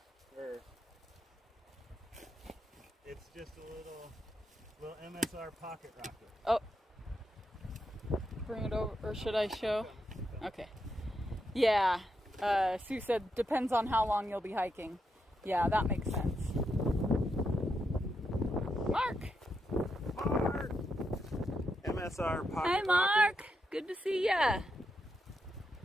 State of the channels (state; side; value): normal; both; correlation 0.83